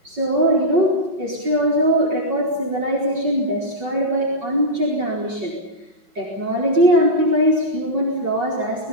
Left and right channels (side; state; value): left; late; 5.4 ms